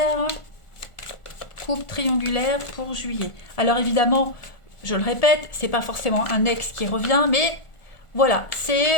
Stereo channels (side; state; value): right; late; 1.4 ms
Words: coupe triangulaire pour juillet. Alors évidemment, je le répète, c'est pas forcément un ex qui revient, mais voilà,